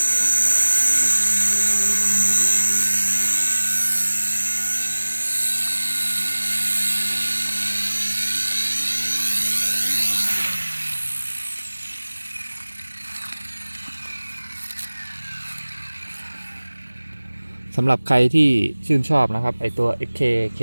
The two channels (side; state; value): both; inverted; correlation -1.00